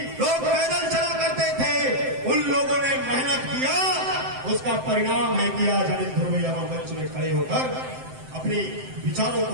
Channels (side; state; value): left; late; 7.7 ms